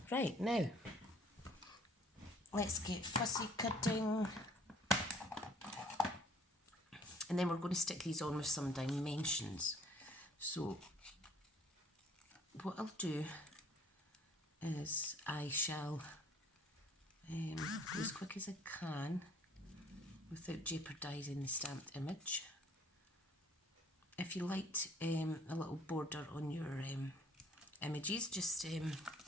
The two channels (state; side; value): normal; both; correlation 0.56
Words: right, now let's get fussy cutting. And then we're going to stick these on with some dimensions. So what I'll do is I shall go as quick as I can without jeopardising the stamped image. If you liked a little border on your images, just